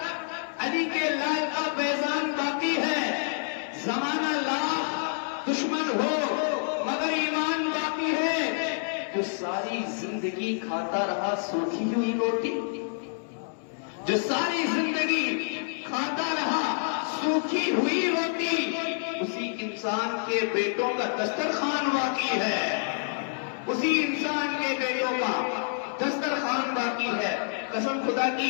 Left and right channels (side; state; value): right; silent; digital silence